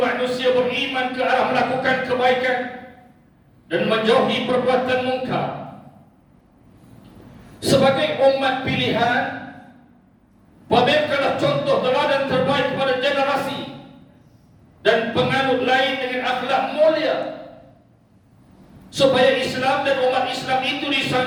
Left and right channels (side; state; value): both; identical; correlation 1.00